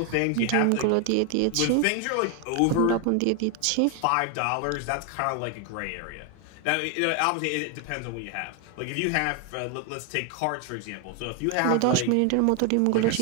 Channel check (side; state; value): both; different; correlation 0.01